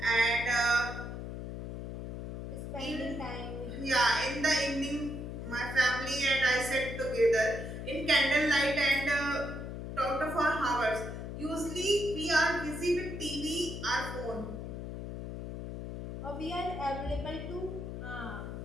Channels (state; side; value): noise; left; hum, 7 dB below the sound